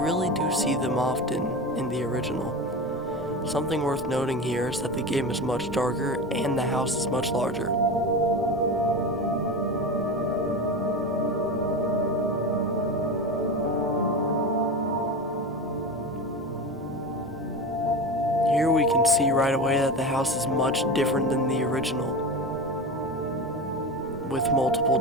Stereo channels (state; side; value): normal; both; correlation 0.25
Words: really do see them often in the original. Something worth noting here is that the game is much darker and the house is much larger. Here we can see right away that the house is much different than the original, with